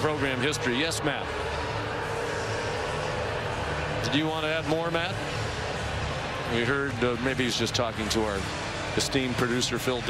history. Yes, Matt. Did you want to add more, Matt? We heard maybe he's just talking to our esteemed producer Phil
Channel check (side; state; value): both; identical; correlation 1.00